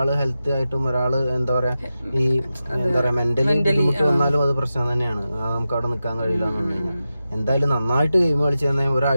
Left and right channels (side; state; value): both; inverted; correlation -0.92